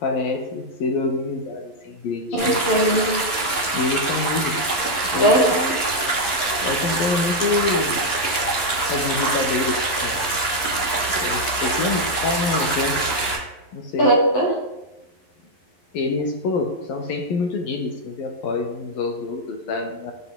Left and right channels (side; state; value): right; late; 11 ms